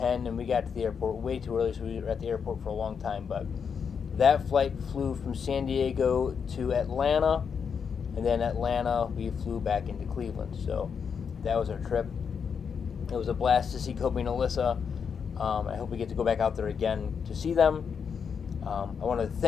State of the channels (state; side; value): quieter; right; 6.6 dB